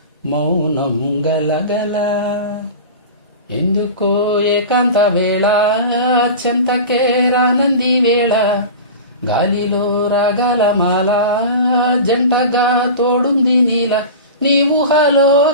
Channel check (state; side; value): inverted; both; correlation -0.32